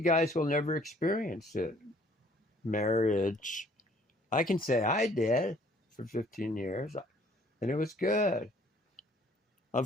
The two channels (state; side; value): normal; both; correlation 0.59